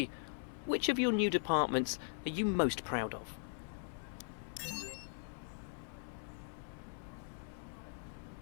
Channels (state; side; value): silent; right; 51 dB below the other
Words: which of your new departments are you most proud of?